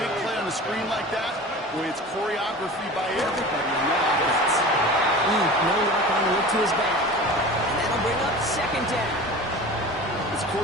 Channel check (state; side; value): normal; both; correlation 0.36